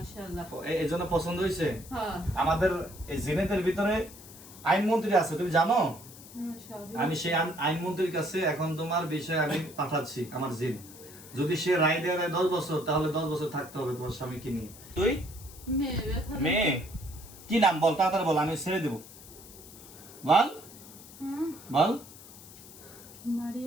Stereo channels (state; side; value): noise; left; hiss, 18 dB below the sound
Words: এই জন্য পছন্দ হয়েছে। হ্যাঁ আমাদের এই জিনেদের ভিতরে আইনমন্ত্রী আছে, তুমি জানো? সবই আমি সেই আইনমন্ত্রীর কাছে এখন তোমার বিষয়ে আমি পাঠাচ্ছি আমার জিন। যদি সে রায় দেয় 10 বছর, তাহলে 10 বছর থাকতে হবে তোমার স্বামীকে নিয়ে। তুই মেয়ে ব্যথা মেয়ে কি নাম বল, তাড়াতাড়ি বল, আমি ছেড়ে দেব। বল হুম, বল।